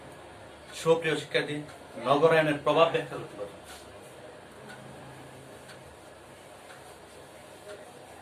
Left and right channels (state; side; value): identical; both; correlation 1.00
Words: সুপ্রিয় শিক্ষার্থী, নগরায়নের প্রভাব ব্যাখ্যা করতে পারবো।